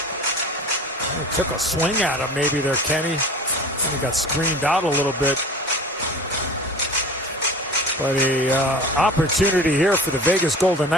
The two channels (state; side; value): normal; both; correlation 0.39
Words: He took a swing at him maybe there, Kenny. And he got screened out a little bit. But a opportunity here for the Vegas Golden